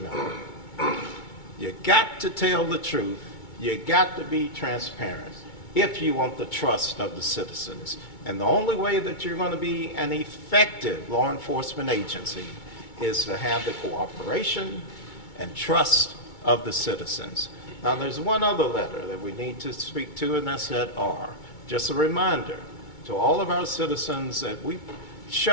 You got to tell the truth. You got to be transparent if you want the trust of the citizens. And the only way that you're going to be an effective law enforcement agency is to have the cooperation and trust of the citizens. Now, there's one other letter that we need to speak to, and that's that R. Just a reminder to all of our citizens that we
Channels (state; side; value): late; right; 2.2 ms